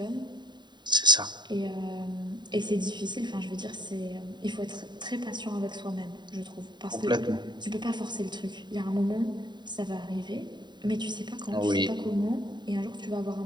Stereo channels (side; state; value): left; late; 0.21 ms